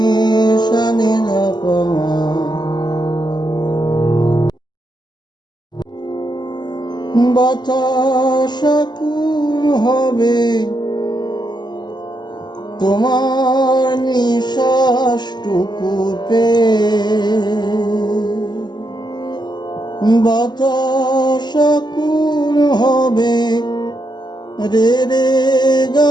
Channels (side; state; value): right; late; 0.21 ms